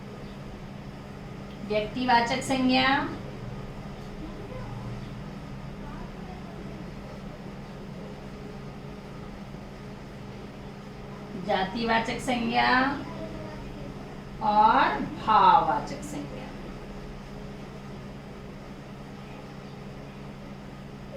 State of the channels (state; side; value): identical; both; correlation 1.00